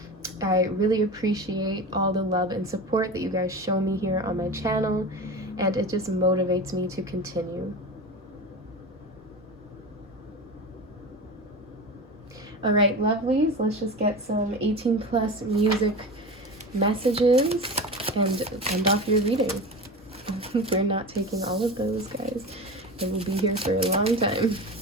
I really appreciate all the love and support that you guys show me here on my channel, and it just motivates me to continue. All right, lovelies, let's just get some 18+ music messages and end off your reading. We're not taking all of those, guys. I will be here for a long time.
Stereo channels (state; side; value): normal; both; correlation 0.28